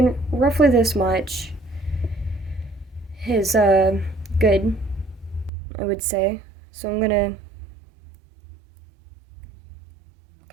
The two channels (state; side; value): drops out; left; at 5.5 s